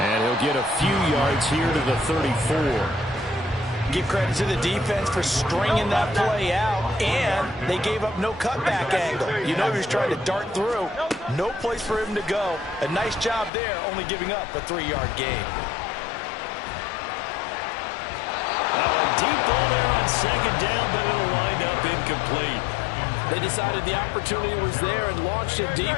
he'll get a few yards here to the 34. Give credit to the defense for stringing that play out, and they gave up no cutback angle. You know he was trying to dart through. No place for him to go. A nice job there, only giving up a 3-yard gain. Now a deep ball there on 2nd down, but it'll wind up incomplete. They decided the opportunity was there and launched a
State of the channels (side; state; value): right; drops out; at 13.5 s